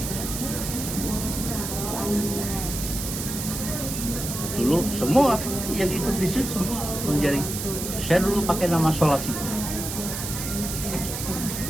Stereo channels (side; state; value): right; noise; hiss, 5 dB below the sound